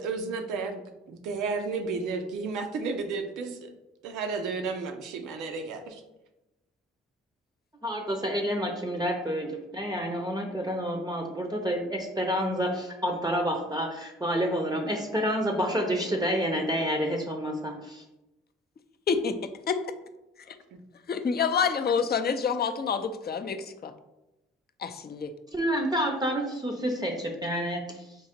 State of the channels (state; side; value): normal; both; correlation 0.45